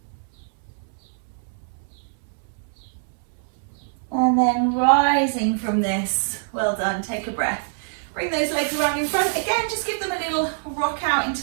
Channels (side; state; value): left; silent; 62 dB below the other